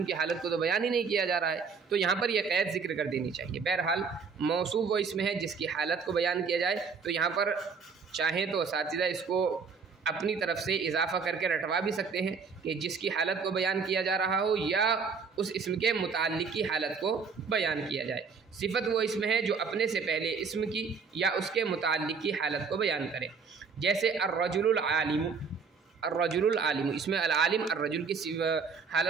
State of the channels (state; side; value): quieter; left; 5.4 dB